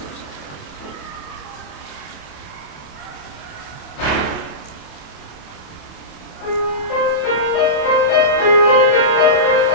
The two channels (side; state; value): right; late; 27 ms